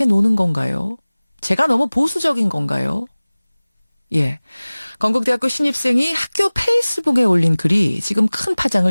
노는 건가요? 제가 너무 보수적인 건가요? 예. 건국대학교 신입생이 학교 페이스북에 올린 글이 지금 큰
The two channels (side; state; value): both; inverted; correlation -0.99